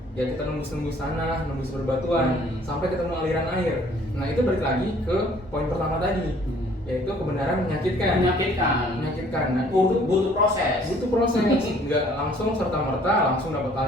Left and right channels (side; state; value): both; normal; correlation 0.58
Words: Ya kita nembus tanah, nembus berbatuan sampai ketemu aliran air. Nah itu balik lagi ke poin pertama tadi, yaitu kebenaran menyakitkan. Nah, butuh proses. Nggak langsung serta merta langsung dapat